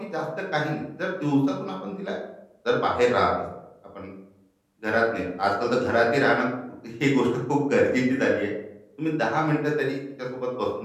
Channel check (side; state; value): both; identical; correlation 1.00